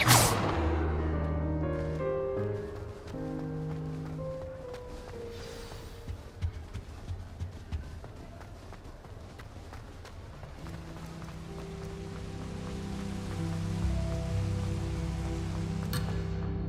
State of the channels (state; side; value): identical; both; correlation 1.00